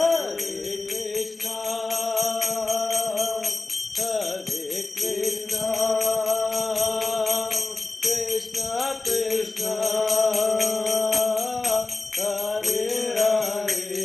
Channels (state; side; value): quieter; right; 3.3 dB